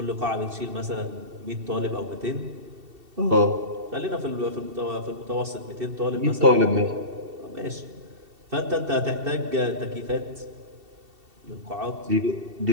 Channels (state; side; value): late; left; 2.7 ms